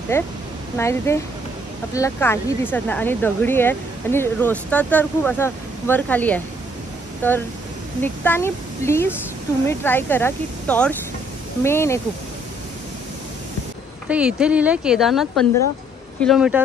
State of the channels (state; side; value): normal; both; correlation 0.65